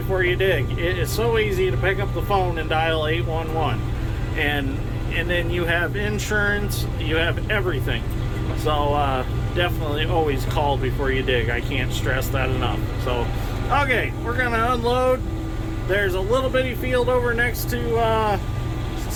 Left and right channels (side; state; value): both; identical; correlation 1.00